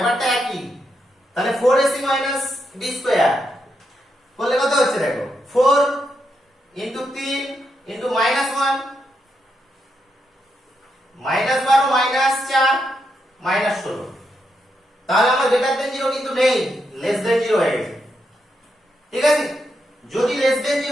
একই। তাহলে 4ac মাইনাস b স্কয়ার করলে কত হচ্ছে দেখো 4 into 3 into minus 1 minus 12 minus 4 minus 16, তাহলে আমার গ্রেটার দেন 0 কিন্তু নেই, লেস দেন 0 হয়ে গেছে। ঠিক আছে, যদি লেস দেন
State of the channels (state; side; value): normal; both; correlation 0.82